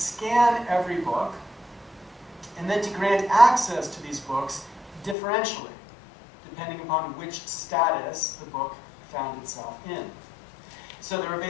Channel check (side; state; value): right; drops out; at 5.2 s